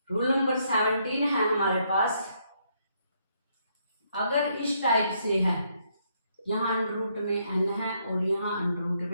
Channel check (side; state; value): both; inverted; correlation -0.73